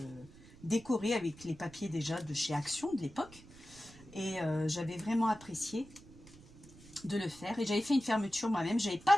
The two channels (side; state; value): right; noise; rumble, 21 dB below the sound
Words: décoré avec les papiers déjà de chez Action de l'époque. Et j'avais vraiment apprécié de le faire. Et j'avais fait une fermeture moi-même. J'avais